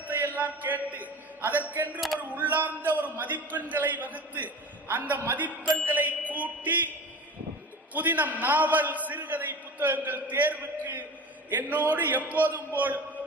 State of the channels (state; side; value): normal; both; correlation 0.35